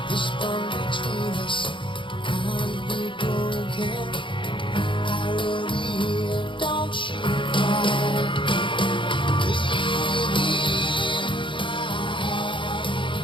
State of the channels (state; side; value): late; right; 0.24 ms